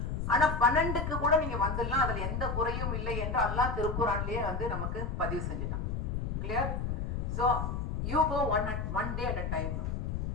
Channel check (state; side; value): noise; left; rumble, 2 dB below the sound